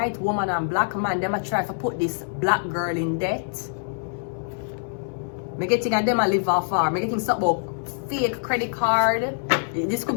woman and black man. Them a try to put this black girl in debt. Me getting and them a live off her. Me getting something about fake credit card. This could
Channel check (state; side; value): silent; right; digital silence